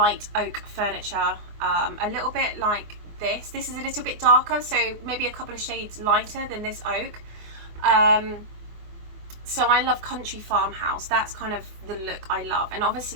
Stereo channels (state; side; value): late; left; 24 ms